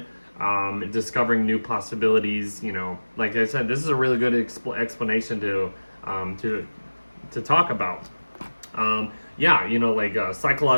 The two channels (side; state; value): both; inverted; correlation -1.00